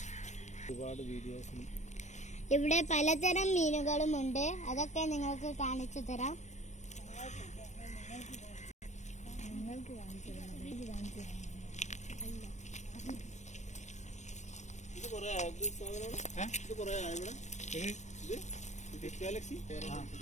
ഇവിടെ പലതരം മീനുകളുമുണ്ട്. അതൊക്കെ നിങ്ങൾക്ക് കാണിച്ചു തരാം.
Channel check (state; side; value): late; right; 0.34 ms